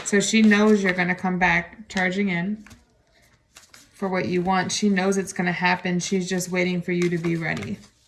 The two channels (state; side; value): identical; both; correlation 1.00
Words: So she knows you're going to come back charging in for what you want. She knows it's going to happen. She's just waiting for you to be ready.